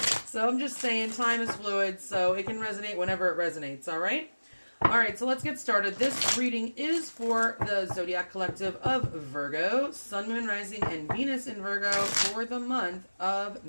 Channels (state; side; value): inverted; both; correlation -1.00